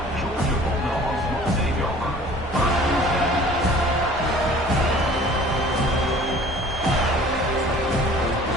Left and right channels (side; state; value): both; normal; correlation 0.49